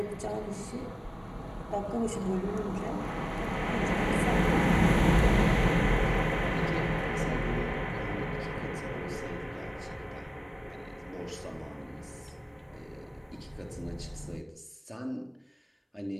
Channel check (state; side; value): identical; both; correlation 1.00